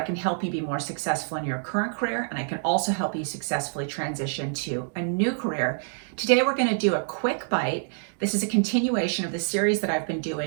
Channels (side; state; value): left; silent; digital silence